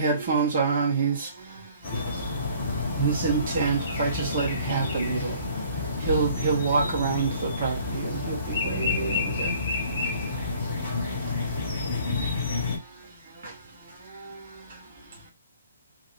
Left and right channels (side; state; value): both; inverted; correlation -0.54